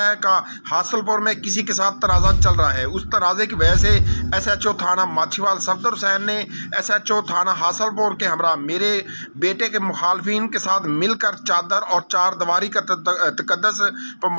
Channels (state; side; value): inverted; both; correlation -1.00